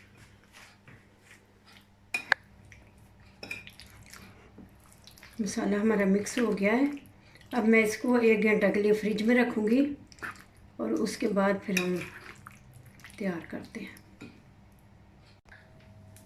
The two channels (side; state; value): both; identical; correlation 1.00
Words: मसाला हमारा मिक्स हो गया है। अब मैं इसको 1 घंटा के लिए फ्रिज में रखूँगी और उसके बाद फिर हम तैयार करते हैं।